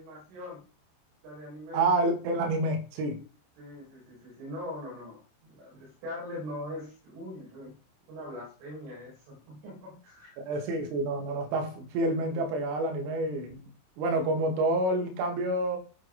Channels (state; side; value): late; left; 27 ms